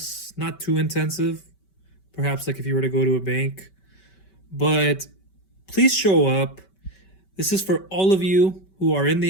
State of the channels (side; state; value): right; late; 5.2 ms